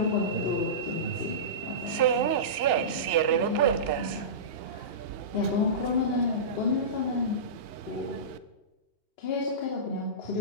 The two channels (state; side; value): late; right; 2.8 ms